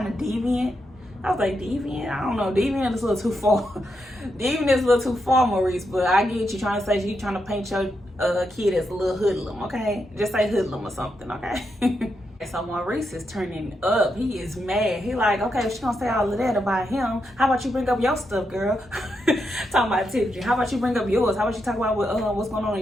of deviant. I was like, deviant? I don't know. Deviant is a little too far. Deviant is a little too far, Maurice. But I get you trying to say you trying to paint your kid as a little hoodlum, okay? Just say hoodlum or something, okay? So Maurice is turning up. He is mad. He like, okay, if she gonna say all of that about him, how about you bring up your stuff, girl? Talking about Tiffany. How about you bring up yours? How about you talk about what's going on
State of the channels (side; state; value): both; normal; correlation 0.83